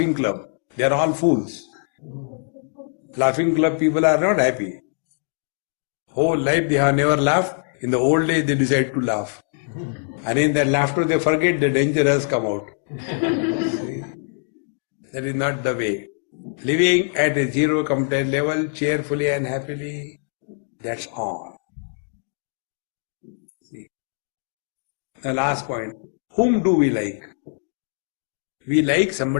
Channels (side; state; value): right; silent; 61 dB below the other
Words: club. They are all fools. Laughing club people are not happy. Whole life they have never laughed. In the old days they decide to laugh. And in that laughter they forget the danger has come out. See? That is not the way. Living at a zero complaint level, cheerfully and happily, that's all. See? The last point, whom do we like? We like